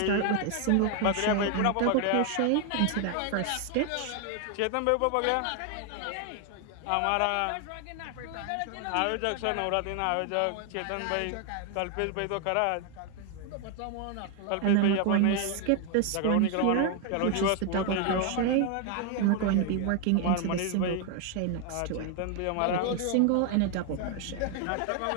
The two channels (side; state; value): both; different; correlation 0.01